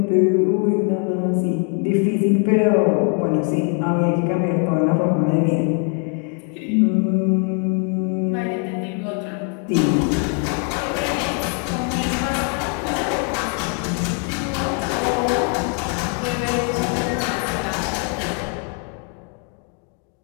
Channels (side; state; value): right; quieter; 36.9 dB